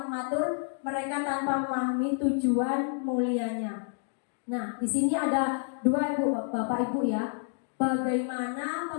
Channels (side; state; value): right; silent; 58 dB below the other